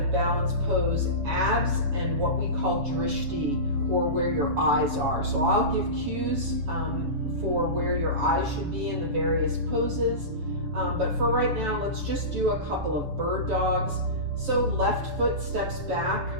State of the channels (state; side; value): late; left; 7.1 ms